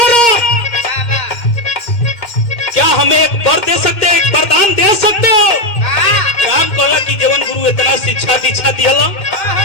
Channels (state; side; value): late; right; 2.1 ms